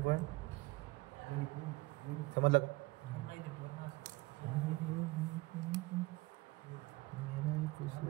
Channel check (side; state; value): left; quieter; 21.8 dB